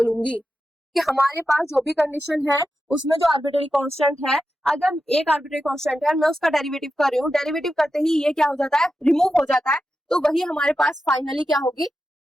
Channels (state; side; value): normal; both; correlation 0.90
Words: कि हमारे पास जो भी कंडीशन है उसमें जो आर्बिट्रेरी कांस्टेंट है, अगर एक आर्बिट्रेरी कांस्टेंट है मैं उसका डेरिवेटिव कर रही हूँ, डेरिवेटिव करते ही ये क्या हो जाता है, रिमूव हो जाता है, तो वही हमारे पास फाइनली क्या होगी,